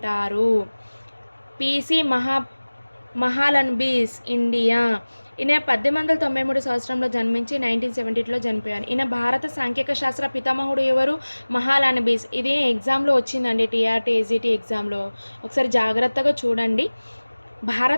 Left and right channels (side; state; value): both; inverted; correlation -1.00